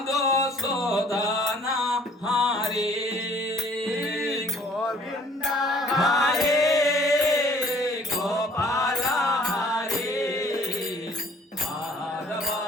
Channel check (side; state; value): both; normal; correlation 0.56